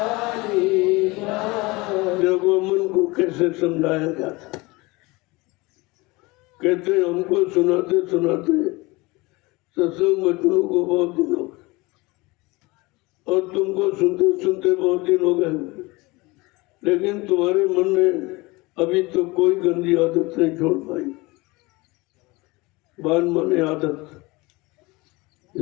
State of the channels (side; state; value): right; quieter; 23.4 dB